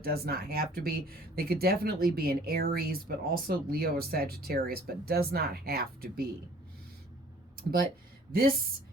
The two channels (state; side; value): normal; both; correlation 0.54